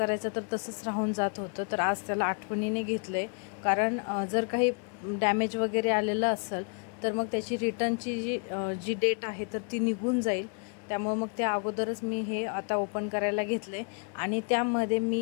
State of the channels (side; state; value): right; quieter; 39.1 dB